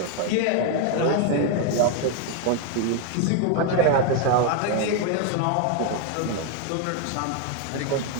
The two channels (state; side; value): different; both; correlation 0.01